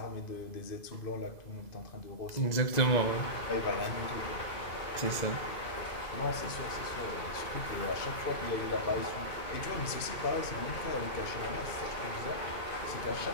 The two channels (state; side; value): late; right; 2.0 ms